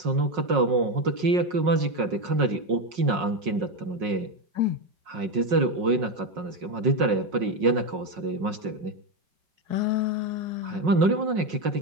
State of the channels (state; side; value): late; left; 5.5 ms